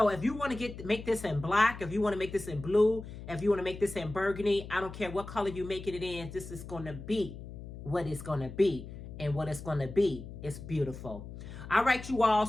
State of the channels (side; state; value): left; noise; hum, 12 dB below the sound